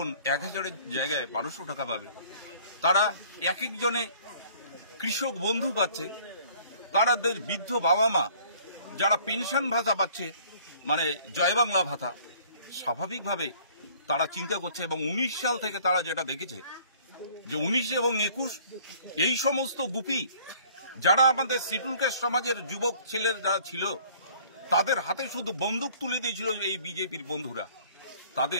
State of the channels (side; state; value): both; inverted; correlation -0.54